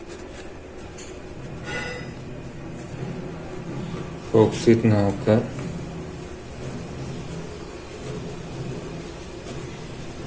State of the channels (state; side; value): identical; both; correlation 1.00